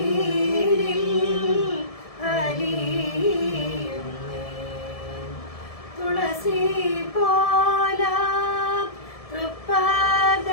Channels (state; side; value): late; right; 1.7 ms